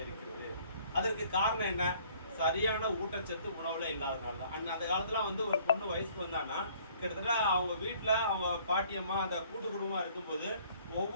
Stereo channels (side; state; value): both; inverted; correlation -0.58